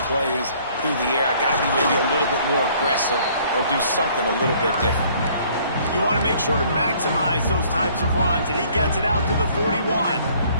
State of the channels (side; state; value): both; inverted; correlation -0.59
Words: plays through the air. I got to be maybe a little bit more aggressive or do something a little bit different. You want to make sure to maximize those types of runs, and he gets it out to the 41.